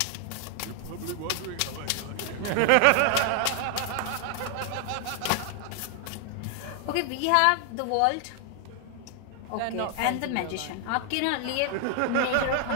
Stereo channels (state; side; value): different; both; correlation 0.00